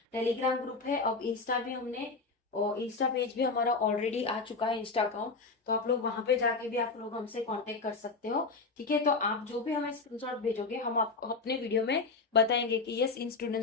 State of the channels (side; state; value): right; quieter; 4.1 dB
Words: टेलीग्राम ग्रुप है, अब इंस्टा भी हमने, और इंस्टा पेज भी हमारा ऑलरेडी आ चुका है, इंस्टा अकाउंट, तो आप लोग वहां पे जाके भी आप लोग हमसे कांटेक्ट कर सकते हो। ठीक है, तो आप जो भी हमें स्क्रीनशॉट भेजोगे हम आपको अपने वीडियो में बताएंगे कि यस इन